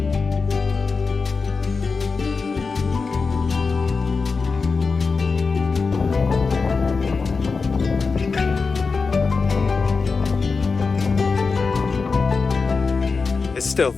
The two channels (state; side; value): quieter; right; 4.6 dB